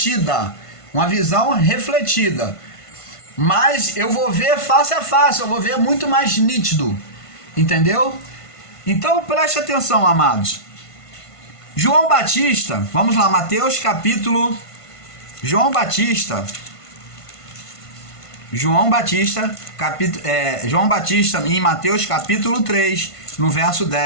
mas eu vou ver face a face, eu vou ver muito mais nítido, entendeu? Então preste atenção, amados. João Batista, vamos lá, João Batista em Mateus capítulo 3, no verso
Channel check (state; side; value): late; right; 1.5 ms